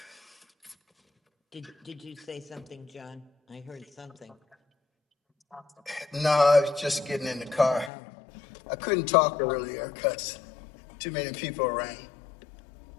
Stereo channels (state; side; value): drops out; right; at 7.9 s